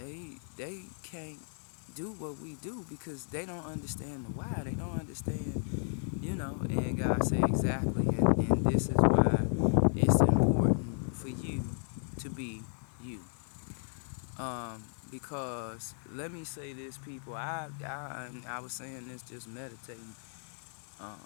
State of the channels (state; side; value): silent; right; 55 dB below the other